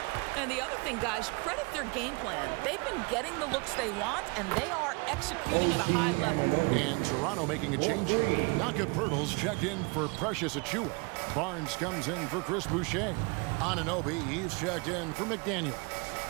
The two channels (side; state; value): left; quieter; 29.9 dB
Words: And the other thing, guys, credit their game plan. They've been getting the looks they want, and they are executing at a high level. And Toronto making a change. Naka Pirtle's checked in for Precious Achiuwa. Barnes comes in for Chris Boucher. Anunoby, he's checked in for McDaniel.